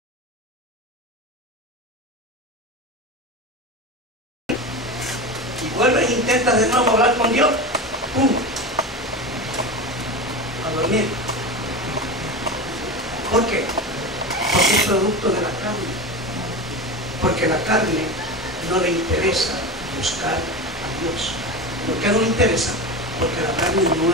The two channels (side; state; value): both; normal; correlation 0.25